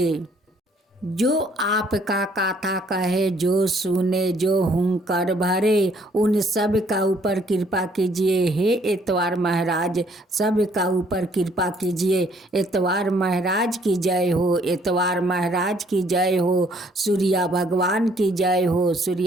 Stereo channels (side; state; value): both; normal; correlation 0.64